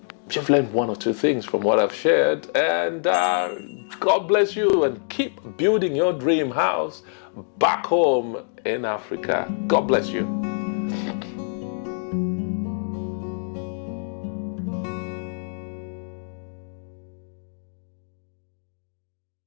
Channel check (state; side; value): silent; right; digital silence